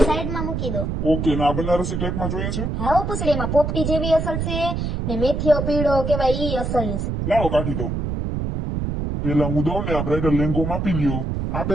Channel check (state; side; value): noise; right; rumble, 2 dB below the sound